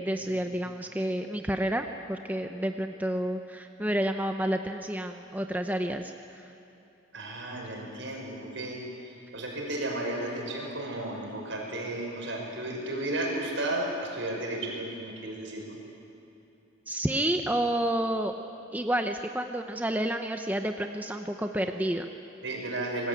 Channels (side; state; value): both; normal; correlation 0.58